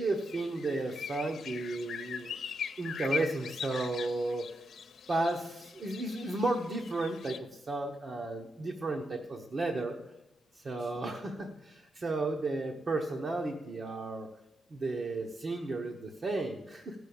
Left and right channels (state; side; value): normal; both; correlation 0.84